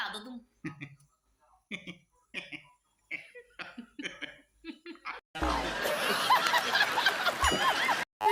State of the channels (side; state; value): both; identical; correlation 1.00